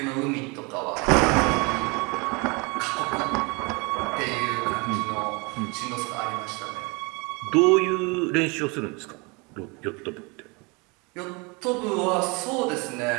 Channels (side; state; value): left; quieter; 28.6 dB